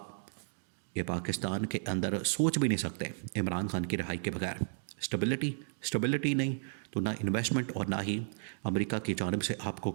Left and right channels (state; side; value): silent; left; digital silence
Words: یہ پاکستان کے اندر سوچ بھی نہیں سکتے عمران خان کی رہائی کے بغیر. اسٹیبلٹی نہیں تو نہ انویسٹمنٹ اور نہ ہی امریکہ کی جانب سے آپ کو